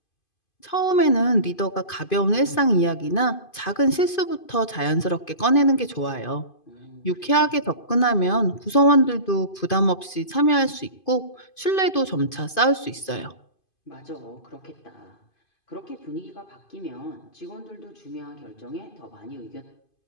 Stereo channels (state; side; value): late; right; 2.5 ms